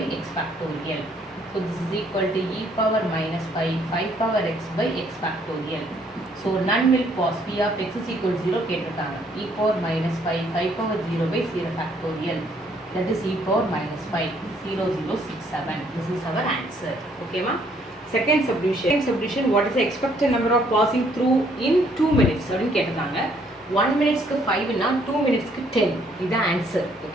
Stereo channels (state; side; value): normal; both; correlation 0.66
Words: x factorial. so this is equal to e power minus 5 power x by x factorial. so none will pass. p of x is equal to 0 கேட்டிருக்காங்க. e power minus 5 power 0 by 0 factorial. that is e power minus 5 this is our answer. okay ma? second subdivision what is the expected number of passing through in 2 minutes அப்படினு கேட்டிருக்காங்க. 1 minutesக்கு 5 னா 2 minutesக்கு 10. இதுதான் answer.